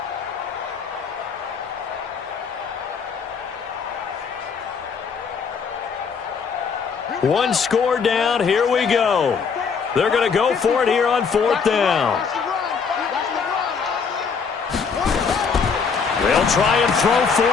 One score down. Here we go. They're going to go for it here on 4th down. They'll try and throw for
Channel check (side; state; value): right; quieter; 5.8 dB